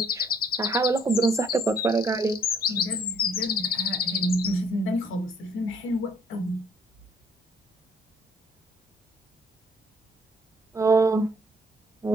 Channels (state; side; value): normal; both; correlation 0.64